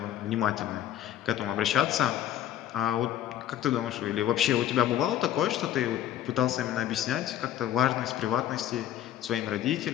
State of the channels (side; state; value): right; quieter; 11.7 dB